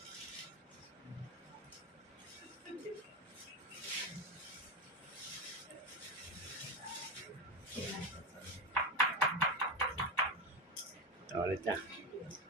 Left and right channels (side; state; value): both; normal; correlation 0.16